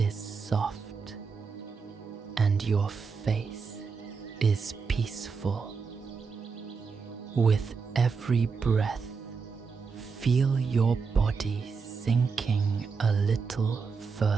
soft, and your face is peaceful. With every breath, feel your body sinking a little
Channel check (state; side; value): quieter; left; 5.2 dB